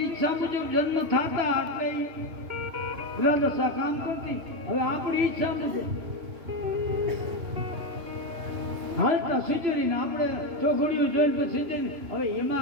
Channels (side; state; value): left; late; 3.2 ms